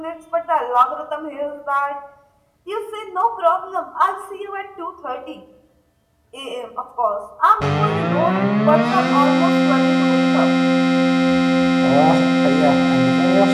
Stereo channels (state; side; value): identical; both; correlation 1.00